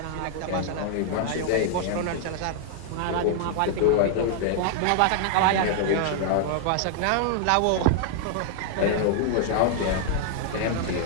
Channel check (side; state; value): both; different; correlation 0.00